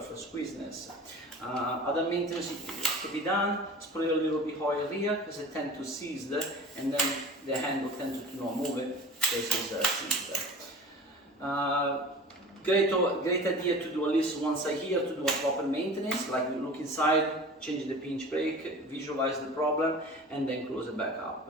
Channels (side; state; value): both; normal; correlation 0.39